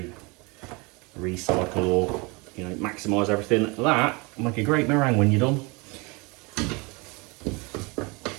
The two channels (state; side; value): quieter; left; 27.7 dB